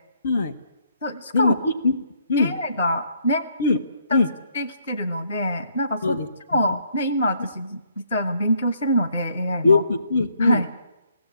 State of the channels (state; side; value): inverted; both; correlation -0.69